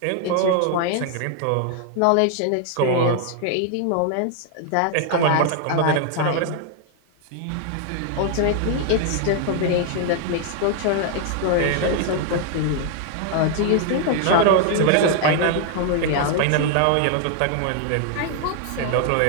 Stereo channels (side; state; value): both; different; correlation 0.00